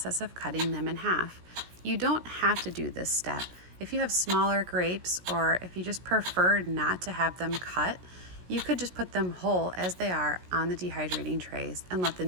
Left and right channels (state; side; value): late; left; 17 ms